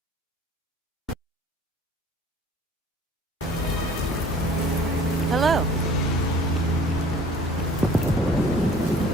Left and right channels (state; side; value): normal; both; correlation 0.50